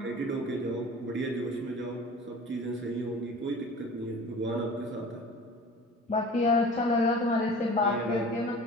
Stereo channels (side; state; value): both; normal; correlation 0.41